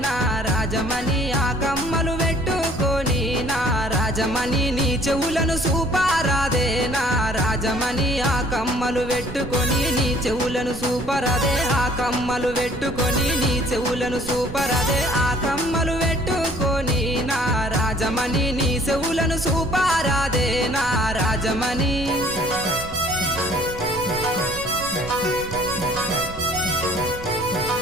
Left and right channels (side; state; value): right; noise; rumble, 12 dB below the sound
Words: నా రాజమణి ఆ కమ్మలు పెట్టుకొని నా రాజమణి నీ చెవులను సూపారాదే నా రాజమణి ఆ కమ్మలు పెట్టుకొని నీ చెవులను సూపరాదే ఆ కమ్మలు పెట్టుకొని నీ చెవులను సూపరాదే ఆ కమ్మలు పెట్టుకొని నా రాజమణి నీ చెవులను సూపారాదే నా రాజమణి